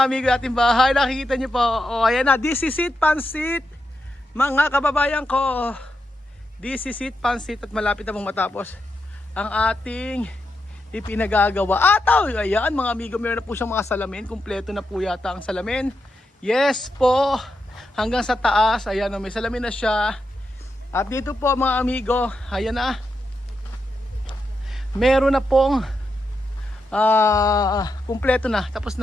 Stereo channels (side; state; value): both; normal; correlation 0.85